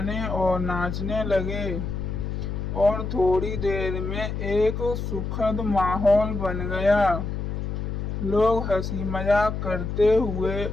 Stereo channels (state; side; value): noise; left; hum, 4 dB below the sound